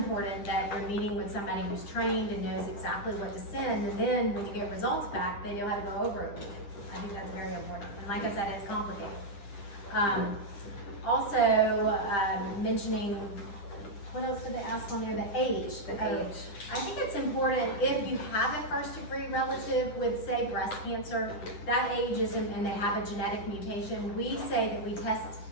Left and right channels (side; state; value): right; late; 10 ms